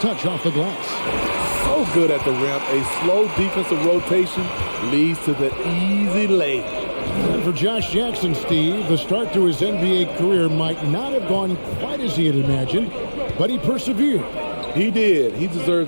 off the glass. So good at the rim. A slow defensive rotation leads to the easy lay. And for Josh Jackson, Steve, the start to his NBA career might not have gone quite as he had imagined, but he persevered. He did. He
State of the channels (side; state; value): both; inverted; correlation -1.00